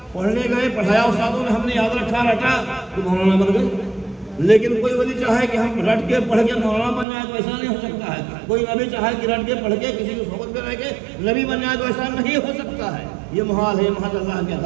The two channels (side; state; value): left; drops out; at 7.1 s